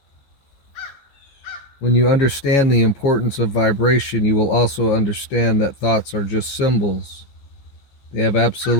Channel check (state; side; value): late; right; 15 ms